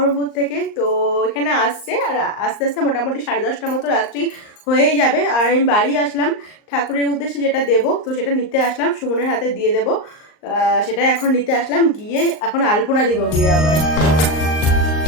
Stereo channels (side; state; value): right; late; 38 ms